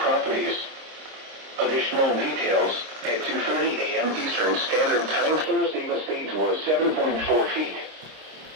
Additional details at 2:30 a.m. Eastern Standard Time. Thursday, the stage was 7.4 feet.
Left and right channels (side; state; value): left; late; 26 ms